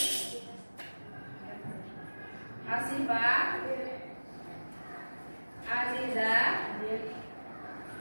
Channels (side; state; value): both; inverted; correlation -1.00